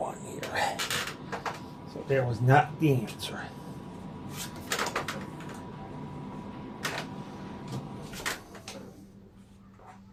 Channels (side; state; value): both; identical; correlation 1.00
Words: here. So that was not the answer.